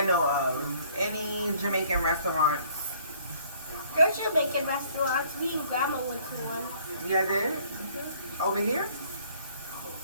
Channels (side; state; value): both; inverted; correlation -0.59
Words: know of, any Jamaican restaurants. There's Jamaican restaurants. Me and Grandma went to one. Yeah, did? Mm-hmm. Over here?